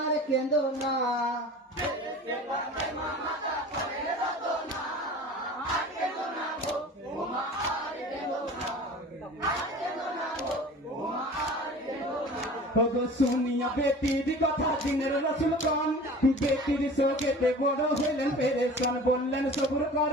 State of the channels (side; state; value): both; normal; correlation 0.41